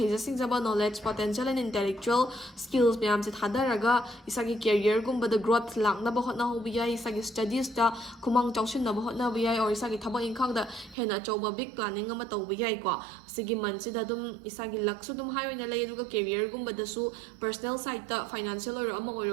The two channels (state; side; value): drops out; left; at 11.0 s